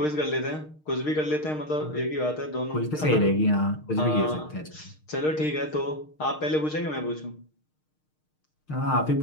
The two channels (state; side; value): late; right; 6.5 ms